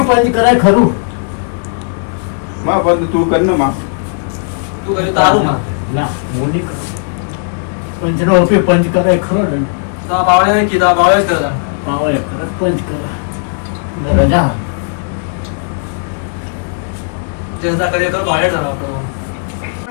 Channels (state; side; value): silent; right; digital silence